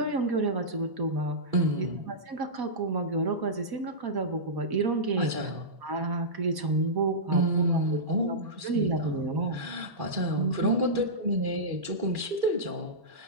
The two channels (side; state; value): left; late; 1.1 ms